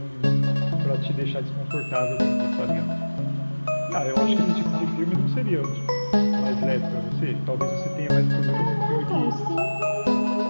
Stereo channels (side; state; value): both; inverted; correlation -1.00